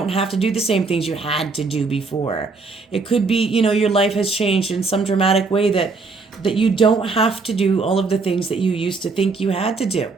have to do the same things you had to do before. It could be, your life has changed in some dramatic way that you don't have to do all of the things that you used to think you had to do.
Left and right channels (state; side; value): quieter; left; 4.2 dB